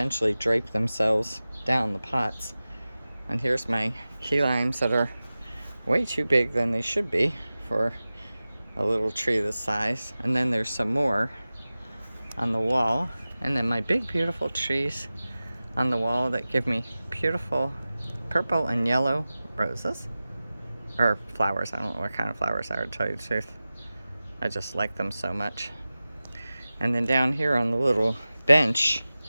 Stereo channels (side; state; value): both; inverted; correlation -0.96